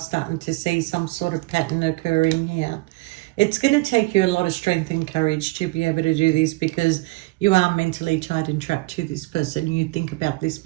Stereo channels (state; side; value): quieter; left; 23.1 dB